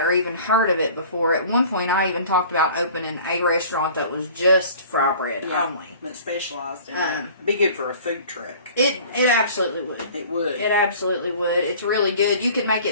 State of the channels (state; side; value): inverted; both; correlation -0.46